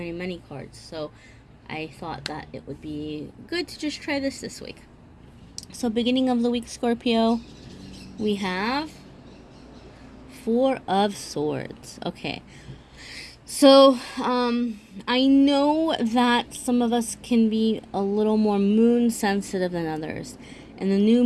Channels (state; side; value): identical; both; correlation 1.00